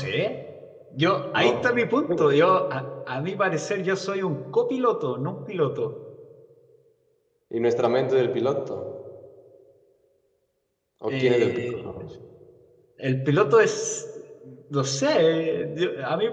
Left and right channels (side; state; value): both; identical; correlation 1.00